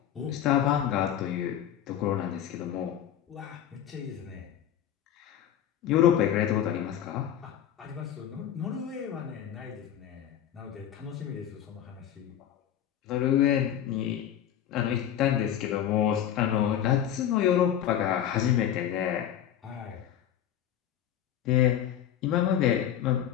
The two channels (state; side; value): quieter; right; 10.4 dB